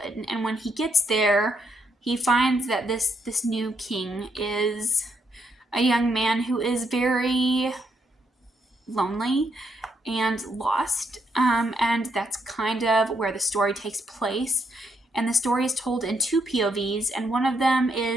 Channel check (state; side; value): normal; both; correlation 0.76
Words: And when he gets there, he finds that this new king is a young man who is very lonely and lost. And that's kind of where the story takes place. And the story is told in 2 POVs, and one of them